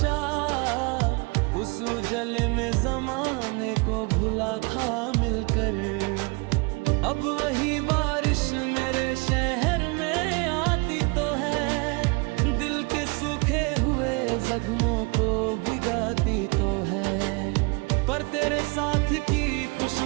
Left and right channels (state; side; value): quieter; left; 29.4 dB